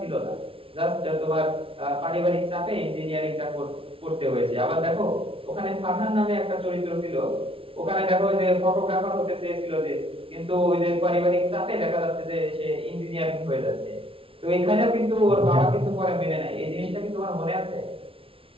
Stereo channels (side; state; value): left; late; 0.26 ms